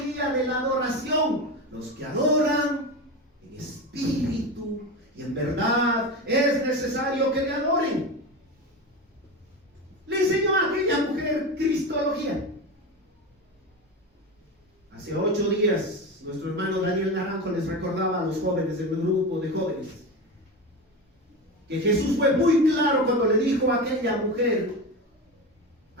de la adoración. Los que adoran en espíritu y en verdad es necesario que le adoren. Le enseñó a aquella mujer cristología. Hace 8 días, nuestro hermano Daniel Naranjo les recordaba a los jóvenes del grupo de jóvenes que Jesús fue muy claro cuando le dijo a aquella mujer,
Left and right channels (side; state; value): both; normal; correlation 0.22